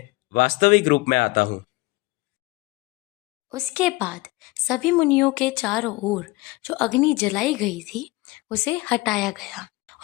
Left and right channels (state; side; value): quieter; right; 22.0 dB